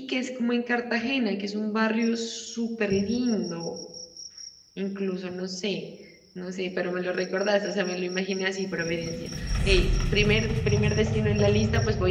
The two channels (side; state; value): both; identical; correlation 1.00